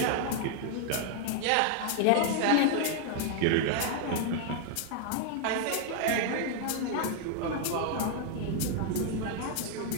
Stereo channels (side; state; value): both; different; correlation 0.00